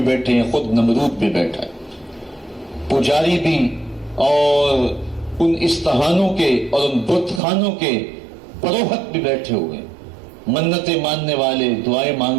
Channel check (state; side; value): drops out; left; at 7.4 s